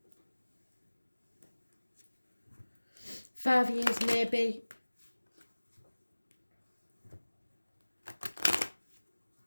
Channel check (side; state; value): both; inverted; correlation -1.00